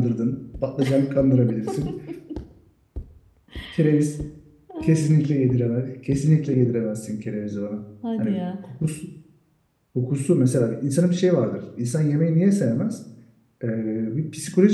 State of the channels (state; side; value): identical; both; correlation 1.00